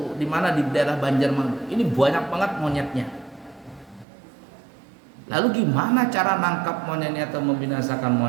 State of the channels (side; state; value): left; drops out; at 4.0 s